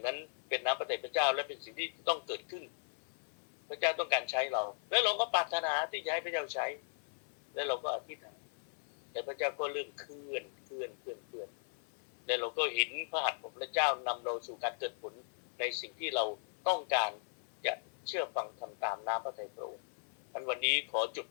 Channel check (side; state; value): right; silent; 53 dB below the other